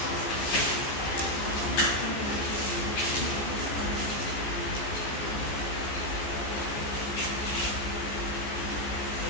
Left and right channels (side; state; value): right; late; 14 ms